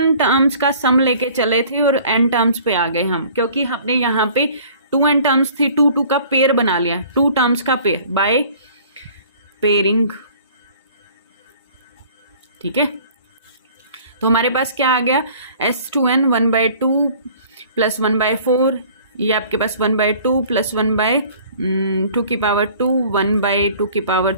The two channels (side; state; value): both; inverted; correlation -0.51